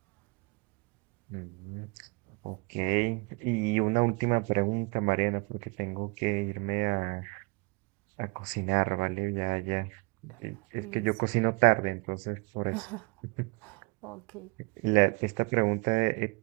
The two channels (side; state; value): left; quieter; 29.2 dB